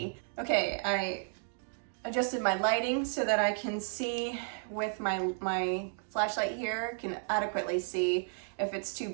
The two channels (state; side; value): silent; left; digital silence